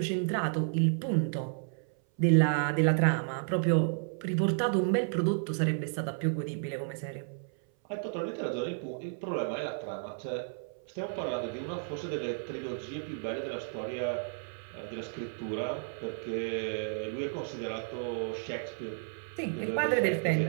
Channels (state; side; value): silent; left; 56 dB below the other